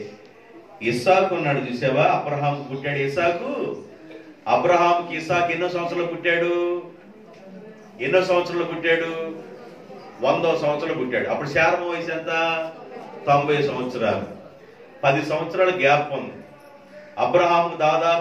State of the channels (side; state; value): both; identical; correlation 1.00